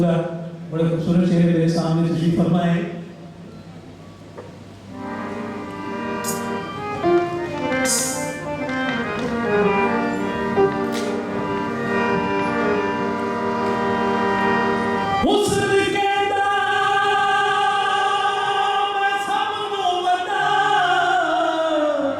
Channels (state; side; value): identical; both; correlation 1.00